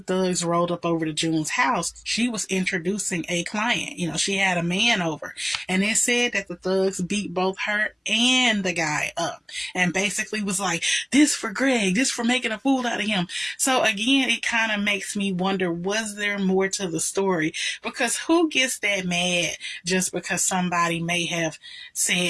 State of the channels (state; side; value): identical; both; correlation 1.00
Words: thugs rolled up over to June's house, she was introducing a client. She had a man over, and it said that the thugs beat both her and the guy up, and basically was like, this for Greg, this for making a fool out of him. So again, it kind of makes me wonder, was there more to the story? Because who gets that mad just because somebody may have